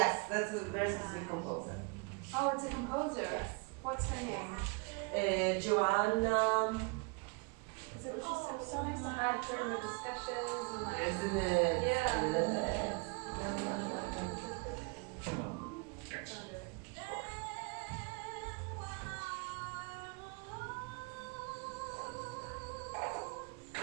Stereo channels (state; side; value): quieter; left; 31.6 dB